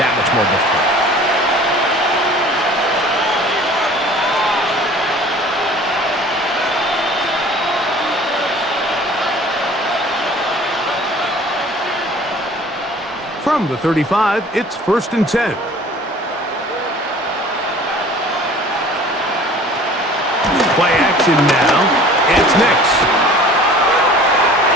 much more difficult. From the 35, it's 1st and 10. Play action now. It's Nix.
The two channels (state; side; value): normal; both; correlation 0.47